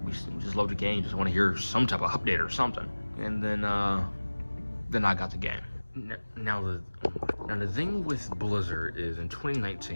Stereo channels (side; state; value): both; inverted; correlation -1.00